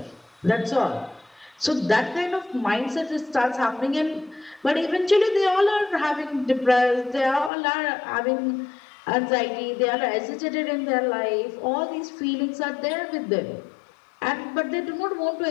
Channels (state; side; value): drops out; right; at 7.5 s